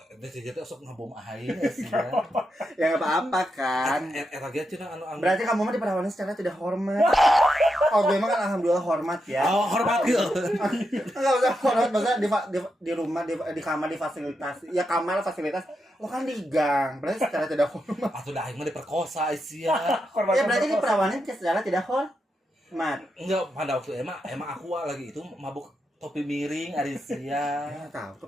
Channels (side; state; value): both; normal; correlation 0.85